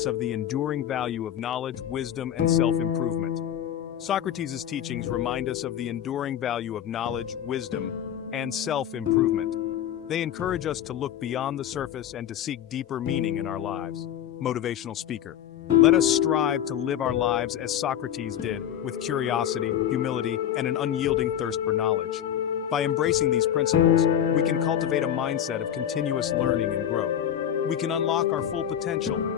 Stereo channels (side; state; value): right; quieter; 10.1 dB